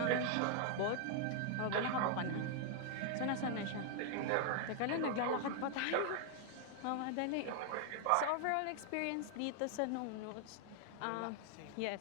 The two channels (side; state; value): both; different; correlation 0.00